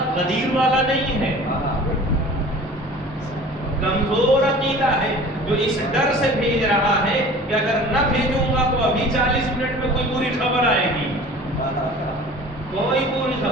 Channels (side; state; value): both; normal; correlation 0.43